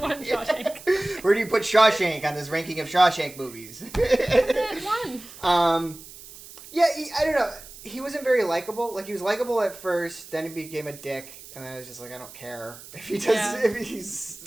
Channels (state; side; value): noise; right; hiss, 17 dB below the sound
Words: Shawshank. Where do you put Shawshank on this ranking of Shawshank movies? One. Yeah, I don't know. He wasn't very likable. Like, he was likable at first, then he became a dick, and then I was just like, I don't care if he does, if he